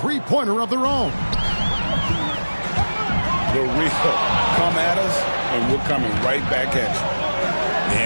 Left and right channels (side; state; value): both; inverted; correlation -1.00